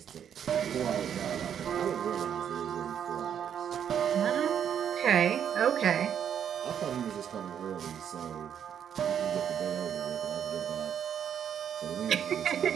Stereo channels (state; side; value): quieter; left; 8.8 dB